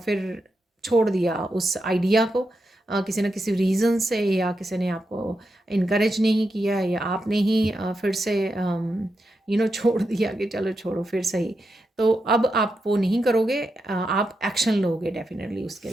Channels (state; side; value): normal; both; correlation 0.86